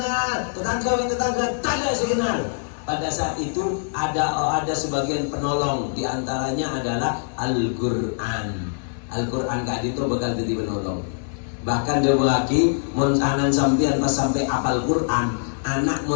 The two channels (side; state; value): right; silent; 63 dB below the other